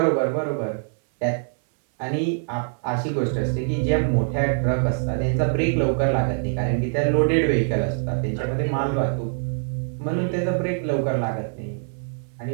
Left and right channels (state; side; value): silent; left; 63 dB below the other